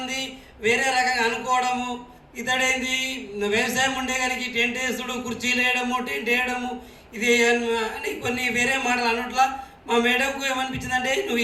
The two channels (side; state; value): both; identical; correlation 1.00